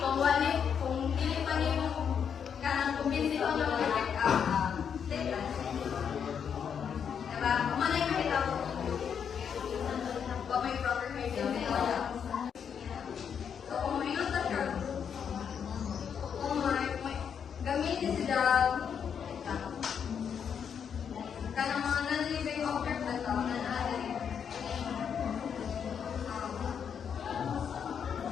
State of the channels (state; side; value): quieter; right; 7.5 dB